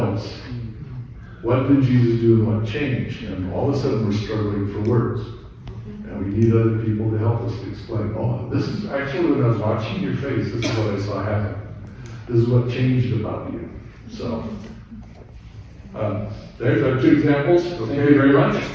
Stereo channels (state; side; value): identical; both; correlation 1.00